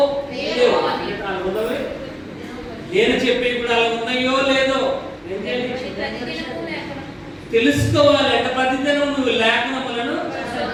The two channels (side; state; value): both; identical; correlation 1.00